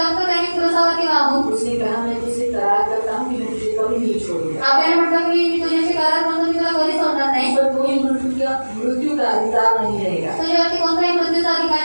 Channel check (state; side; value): inverted; both; correlation -1.00